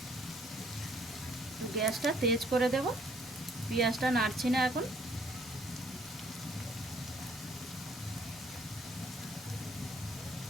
গ্যাসটা তেজ করে দেব। পেঁয়াজটা নাড়ছি না এখন।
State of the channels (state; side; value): normal; both; correlation 0.63